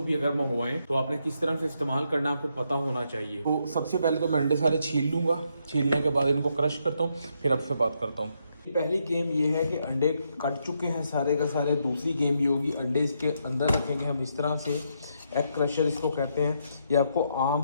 भी अगर मंगवाएं तो आपने किस तरह से इस्तेमाल करना आपको पता होना चाहिए। तो सबसे पहले तो मैं अंडे सारे छील लूंगा, छीलने के बाद इनको क्रश करता हूँ, फिर आपसे बात करता हूँ। पहली गेम ये है कि अंडे कट चुके हैं सारे का सारे। दूसरी गेम ये होगी, अंडे इसके अंदर रखेंगे हम इस तरह से, एग क्रशर इसको कहते हैं। ये आपको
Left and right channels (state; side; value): inverted; both; correlation -0.78